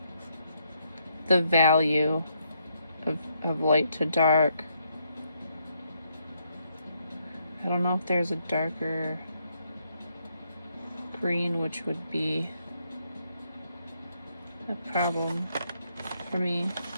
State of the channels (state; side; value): inverted; both; correlation -0.75